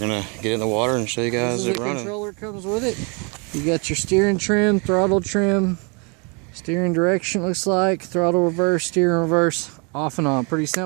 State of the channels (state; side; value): quieter; left; 33.4 dB